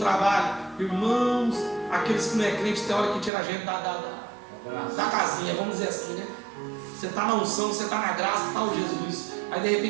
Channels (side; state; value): left; drops out; at 3.3 s